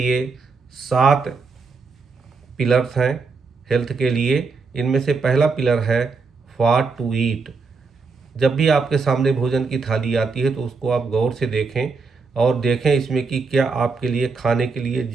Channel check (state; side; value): quieter; left; 4.6 dB